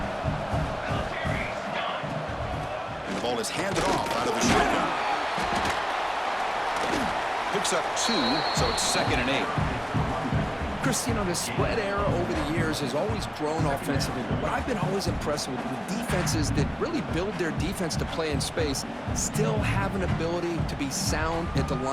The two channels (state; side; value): identical; both; correlation 1.00